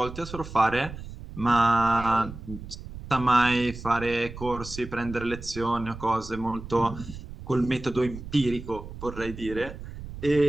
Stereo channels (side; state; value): right; noise; rumble, 12 dB below the sound